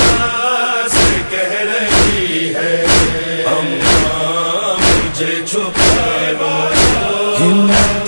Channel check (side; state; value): both; inverted; correlation -1.00